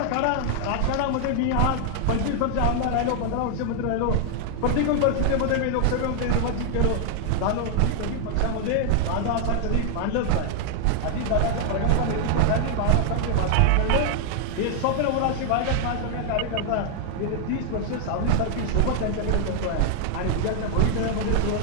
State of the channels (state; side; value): different; both; correlation 0.00